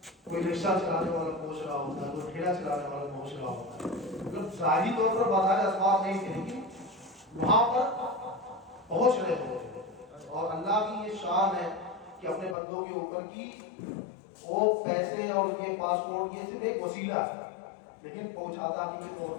کوئی رکشہ چلانے والا پہنچ رہا ہوتا ہے کوئی ٹھیلا چلانے والا پہنچ رہا ہوتا ہے. مطلب ظاہری طور پر بظاہر اسباب نہیں تھے لیکن وہاں پر پہنچ رہے ہوتے. اور اللہ کی یہ شان ہے کہ اپنے بندوں کے اوپر کی وہ پیسے اور یہ پاسپورٹ یہ صرف ایک وسیلہ ہے لیکن پہنچاتا حقیقی طور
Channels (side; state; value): right; drops out; at 12.6 s